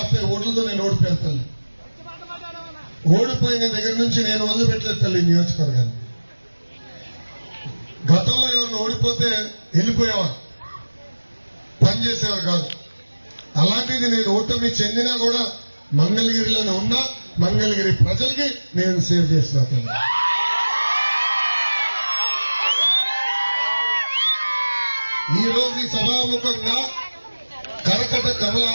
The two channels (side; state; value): both; inverted; correlation -1.00